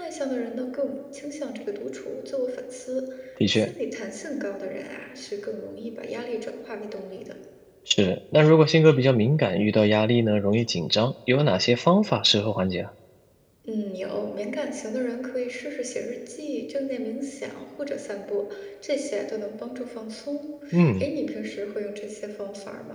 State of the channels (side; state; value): both; identical; correlation 1.00